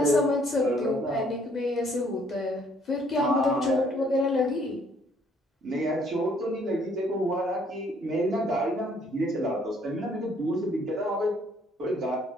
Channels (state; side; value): normal; both; correlation 0.64